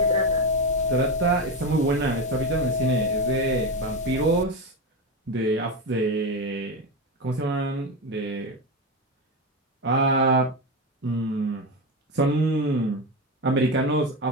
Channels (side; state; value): both; normal; correlation 0.16